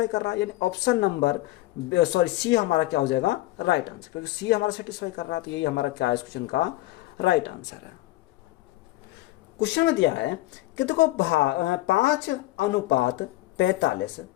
कर रहा है। यानी ऑप्शन नंबर सी हमारा क्या हो जाएगा? राइट आंसर, क्योंकि सी हमारा सेटिस्फाई कर रहा है। तो यही हमारा क्या है इस क्वेश्चन का राइट आंसर है। क्वेश्चन में दिया है कि देखो 5:45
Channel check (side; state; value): right; quieter; 17.8 dB